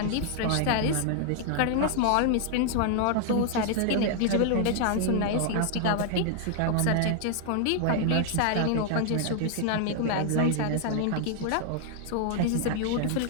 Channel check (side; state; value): both; different; correlation 0.00